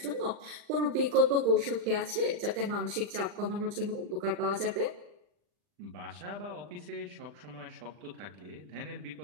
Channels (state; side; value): late; left; 40 ms